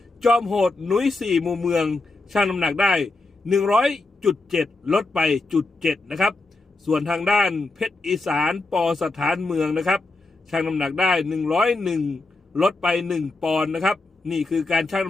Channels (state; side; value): quieter; right; 3.3 dB